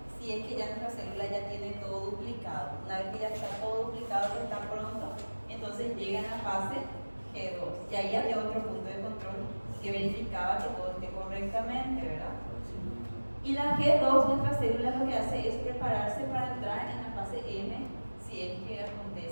si es que ya nuestra célula ya tiene todo duplicado? Una vez que ya está todo duplicado, que está pronto, entonces llega a la fase G2. Y ahí había otro punto de control que verificaba que todo esté correctamente, ¿verdad? Y la G2, nuestra célula, lo que hace es prepararse para entrar en la fase M si es que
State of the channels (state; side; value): inverted; both; correlation -1.00